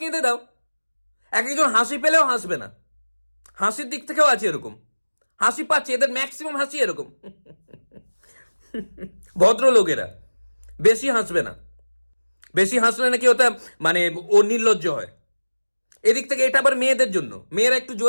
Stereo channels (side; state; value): both; inverted; correlation -1.00